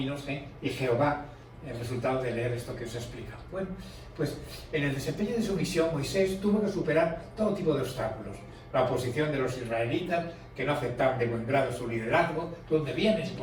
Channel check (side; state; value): both; identical; correlation 1.00